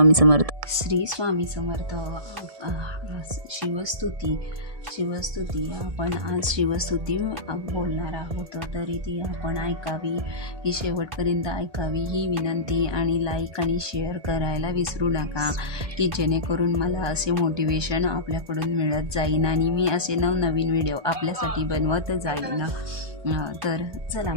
समर्थ. श्री स्वामी समर्थ. शिवस्तुती आपण आज शिवस्तुती बोलणार आहोत, तरी ती आपण ऐकावी, ही शेवटपर्यंत ऐकावी ही विनंती. आणि लाईक आणि शेअर करायला विसरू नका, की जेणेकरून मला असे मोटिवेशन आपल्याकडून मिळत जाईन आणि मी असे नवनवीन व्हिडिओ आपल्यासाठी बनवत जाईन. तर चला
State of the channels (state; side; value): late; left; 1.2 ms